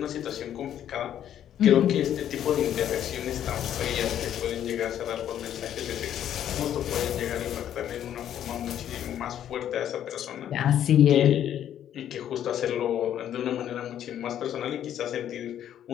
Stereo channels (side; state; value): right; quieter; 10.6 dB